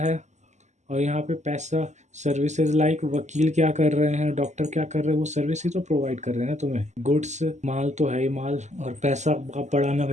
और यहाँ पे पैसा सर्विसेज लाइक वकील क्या कर रहे हैं, डॉक्टर क्या कर रहे हैं, वो सर्विस ही तो प्रोवाइड कर रहे हैं ना तुम्हें। गुड्स, माल तो है ही माल, और पैसा आप बढ़ाना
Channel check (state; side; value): late; left; 0.34 ms